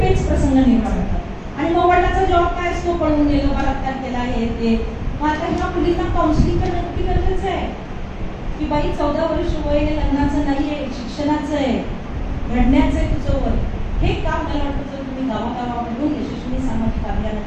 पेच प्रसंग निर्माण होतात. आणि मग वडिलांचा जबाब काय असतो, पळून गेलो, बलात्कार केला, हे ते. मग आता ह्या मुलींना काउन्सिलिंग करणं किती गरजेचं आहे की बाई 14 वर्ष वय हे लग्नाचं नाहीये, शिक्षणाचं आहे, घडण्याचं आहे तुझं वय. हे काम मला वाटतं जर तुम्ही गावागावामधून यशस्वी सामाजिक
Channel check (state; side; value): identical; both; correlation 1.00